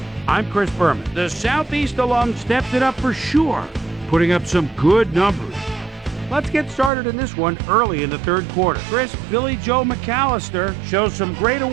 I'm Chris Berman. The Southeast alum stepped it up for sure, putting up some good numbers. Let's get started in this one early in the third quarter. Chris Billy Joe McAllister shows some great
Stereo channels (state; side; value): drops out; left; at 6.9 s